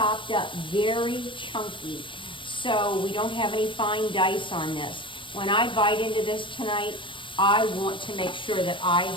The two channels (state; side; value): late; right; 0.25 ms